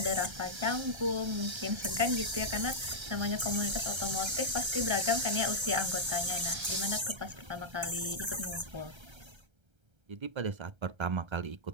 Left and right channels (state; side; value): late; left; 1.3 ms